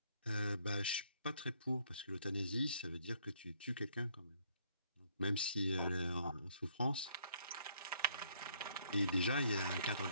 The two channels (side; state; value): both; inverted; correlation -0.66